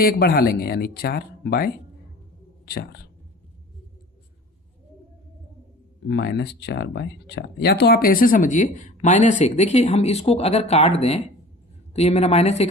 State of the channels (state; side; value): normal; both; correlation 0.42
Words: 1 बढ़ा लेंगे, यानी 4/4 -4/4। या तो आप ऐसे समझिए -1, देखिए हम इसको अगर काट दें तो ये मेरा